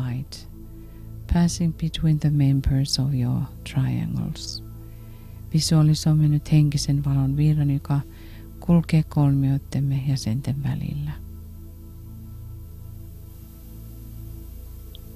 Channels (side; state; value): both; identical; correlation 1.00